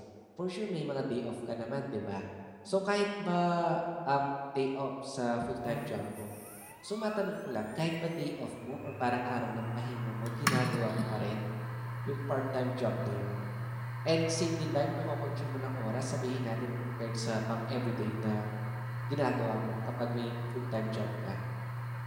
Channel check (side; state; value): both; identical; correlation 1.00